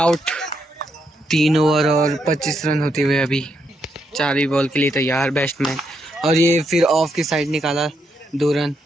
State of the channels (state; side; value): normal; both; correlation 0.79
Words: 3 ओवर और 25 रन होते हुए अभी 4वीं बॉल के लिए तैयार बैट्समैन। और ये फिर ऑफ की साइड निकाला 2 रन।